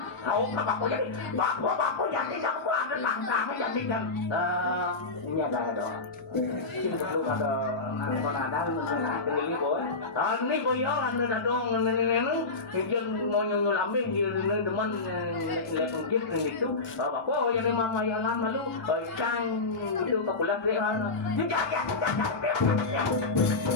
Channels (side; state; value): right; quieter; 3.6 dB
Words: kau bapo jadi bapo jadi yang buat langkah jadi kan ini ada itu ada ini boy ini boy ada dong ini mau nyusul ambing di teman lepas gitu bapo yang mama yang lama lu cang itu kapulah dia